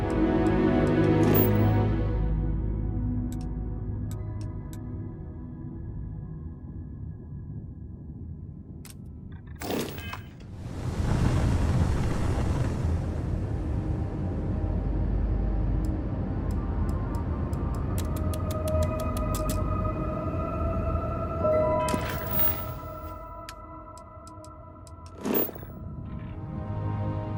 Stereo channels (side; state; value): both; identical; correlation 1.00